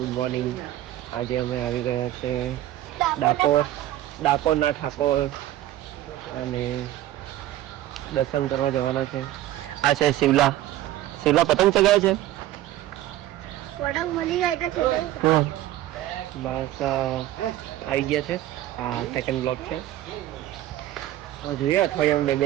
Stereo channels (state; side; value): quieter; left; 14.0 dB